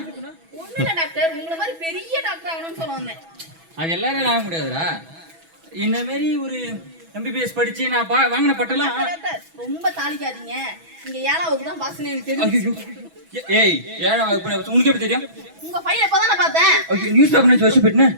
ஒண்ணு இல்ல டாக்டர், உங்களை மாதிரி பெரிய டாக்டர் ஆகணும்னு சொல்ல வந்தேன். அது எல்லாரும் ஆக முடியாதுடா. இந்த மாதிரி ஒரு MBBS படிச்சு நான் வாங்கின பட்டெல்லாம். ரொம்ப தாளிக்காதீங்க. நீங்க 7ஆம் வகுப்பு தான் பாஸ்னு எனக்கு தெரியும். ஏய் 7ஆம் வகுப்பு உனக்கு எப்படி தெரியும்? உங்க பையன் இப்பதானே பார்த்தேன். நியூஸ் பேப்பர் வச்சு போயிட்டேன்.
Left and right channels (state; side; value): late; left; 6.1 ms